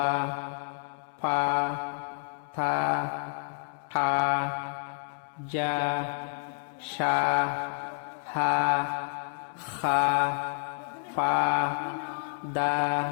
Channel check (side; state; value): right; silent; 58 dB below the other